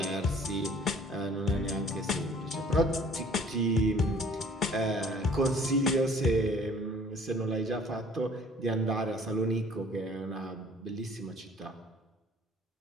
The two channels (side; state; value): both; normal; correlation 0.54